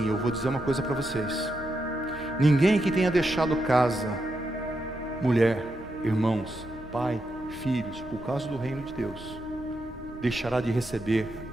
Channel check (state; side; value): normal; both; correlation 0.84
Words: eu vou dizer uma coisa para vocês. Ninguém que tenha deixado casa, mulher, irmãos, pai, filhos, por causa do reino de Deus, deixará de receber